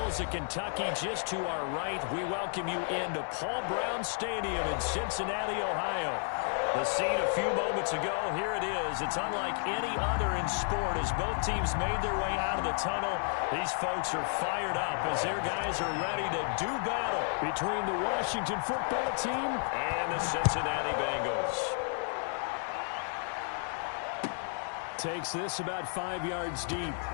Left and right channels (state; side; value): silent; right; 55 dB below the other